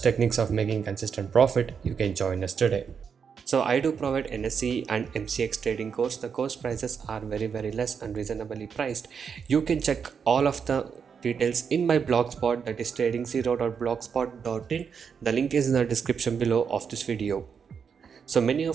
of making consistent profit, you can join us today. So I do provide NSE and MCX trading course. The course prices are very less and reasonably priced. You can check all of the details in my blogspot, that is trading0.blogspot.in. The link is in the description below of this video. So many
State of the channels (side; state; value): left; quieter; 6.6 dB